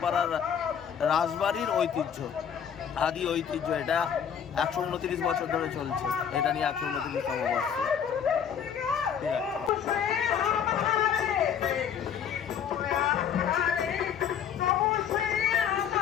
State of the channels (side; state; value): right; quieter; 8.1 dB